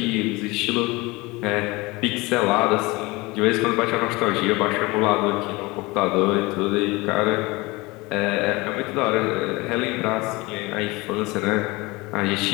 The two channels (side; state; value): right; quieter; 23.1 dB